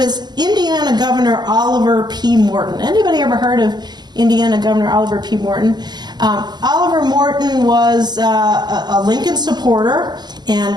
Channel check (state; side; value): late; left; 0.20 ms